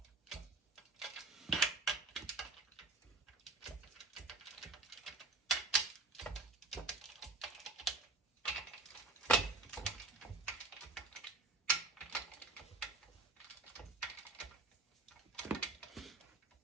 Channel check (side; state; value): left; quieter; 3.6 dB